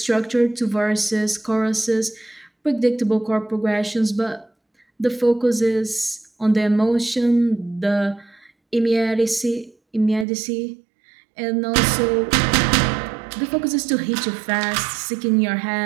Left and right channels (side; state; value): left; drops out; at 10.2 s